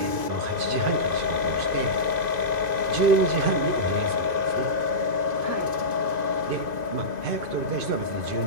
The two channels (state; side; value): late; left; 2.5 ms